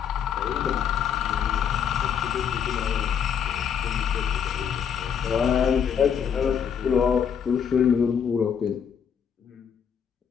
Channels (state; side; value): quieter; right; 7.7 dB